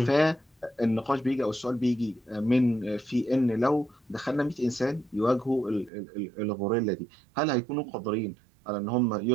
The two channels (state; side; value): drops out; left; at 5.9 s